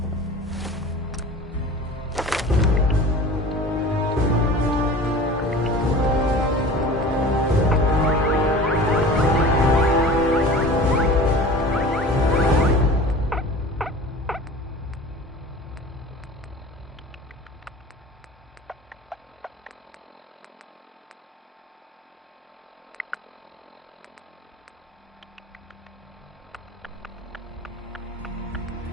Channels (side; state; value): both; normal; correlation 0.39